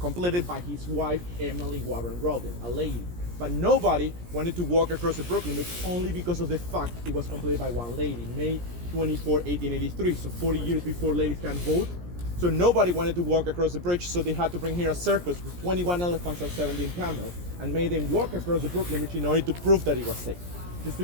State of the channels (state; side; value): late; left; 17 ms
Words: by his wife, Emily Warren Rowling, a lady. But nobody wanted to walk across the Brooklyn Bridge only because of the fact it was completed by one lady, May 24, 1883, so 40 years before ladies can vote. So nobody wanted to walk across the bridge, so they had to bring here a circus with 21 elephants and 17 camels and made them walk across the Brooklyn Bridge in order to prove that it was safe. Just to